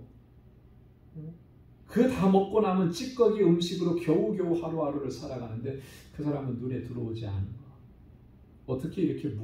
그 다 먹고 남은 찌꺼기 음식으로 겨우겨우 하루하루를 살아가는데 그 사람은 눈에 들어오지 않은 거. 어떻게 이렇게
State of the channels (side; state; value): both; identical; correlation 1.00